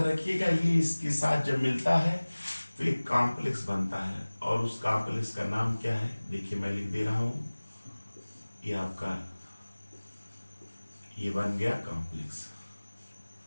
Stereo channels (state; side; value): inverted; both; correlation -1.00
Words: रखिएगा ये इसके साथ जब मिलता है तो एक कॉम्प्लेक्स बनता है, और उस कॉम्प्लेक्स का नाम क्या है, देखिए मैं लिख दे रहा हूं, ये आपका ये बन गया कॉम्प्लेक्स।